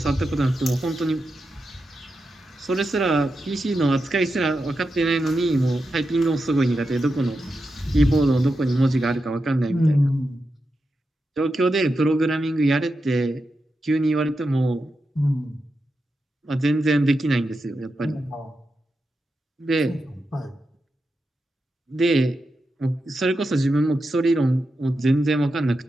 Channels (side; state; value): both; normal; correlation 0.89